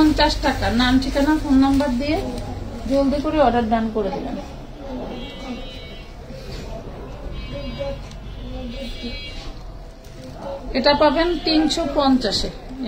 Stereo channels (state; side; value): identical; both; correlation 1.00